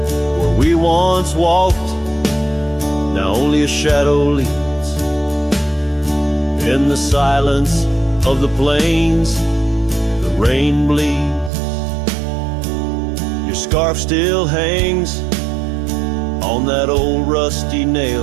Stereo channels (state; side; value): drops out; left; at 11.5 s